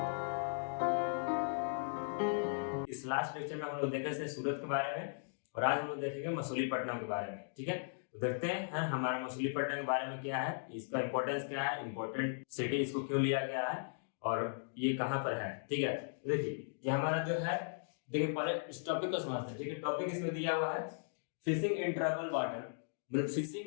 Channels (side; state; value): right; silent; digital silence